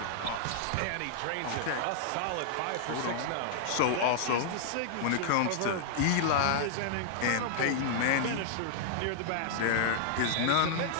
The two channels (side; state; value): both; different; correlation -0.01